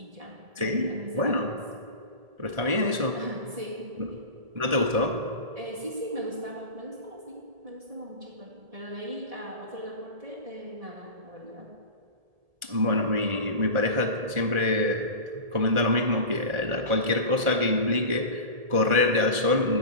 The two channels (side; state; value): left; late; 1.7 ms